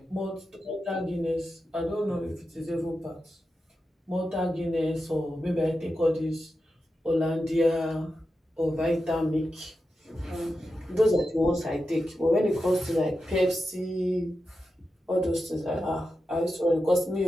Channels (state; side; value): normal; both; correlation 0.90